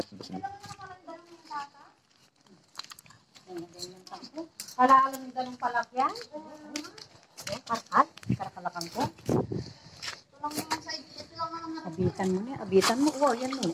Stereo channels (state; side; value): identical; both; correlation 1.00